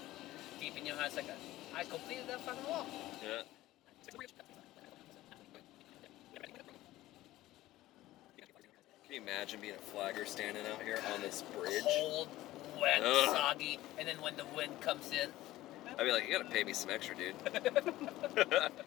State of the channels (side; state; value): right; quieter; 16.2 dB